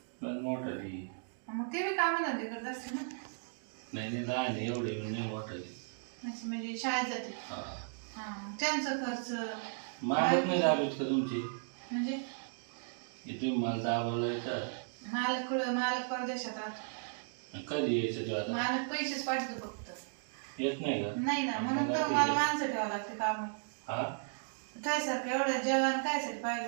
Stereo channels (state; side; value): silent; left; digital silence